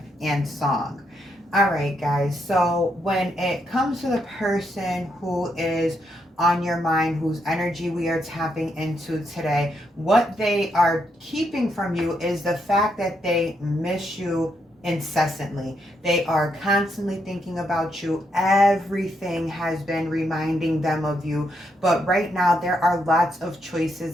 and Song. All right, guys. So when it comes to the person who is on your mind, whose energy we are tapping into today, what they are keeping from you is the fact that they miss you incessantly. They are constantly thinking about you. Everything has been reminding them of you. But right now, there are lots of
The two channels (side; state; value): both; normal; correlation 0.78